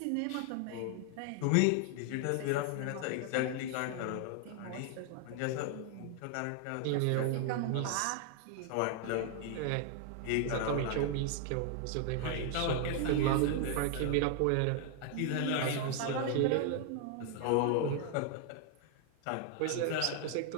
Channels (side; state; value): both; different; correlation 0.00